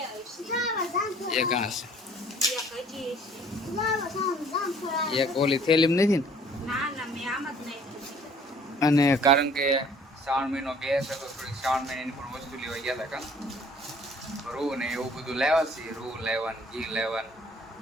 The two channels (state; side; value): normal; both; correlation 0.55